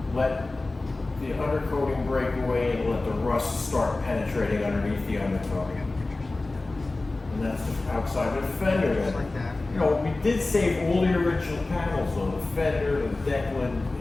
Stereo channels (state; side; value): quieter; right; 3.1 dB